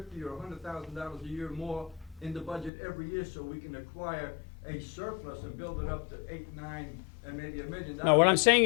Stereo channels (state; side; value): drops out; right; at 2.7 s